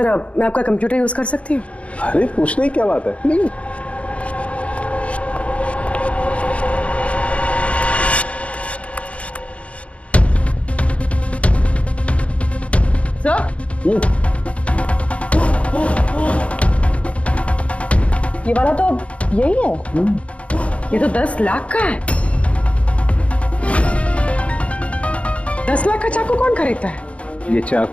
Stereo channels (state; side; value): late; right; 0.063 ms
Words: मैं आपका कंप्यूटर यूज कर सकती हूँ? अरे पूछने की क्या बात है। नहीं सर, ये वाला तो यही है। ये तो 10 लाख का है। 10 लाख का चाकू कौन खरीदता है? ये